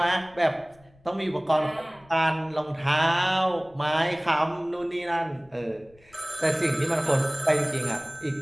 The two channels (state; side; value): noise; left; rumble, 29 dB below the sound